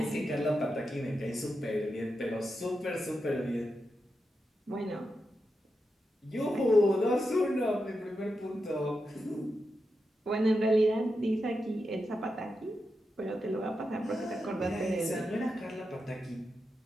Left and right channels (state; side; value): normal; both; correlation 0.88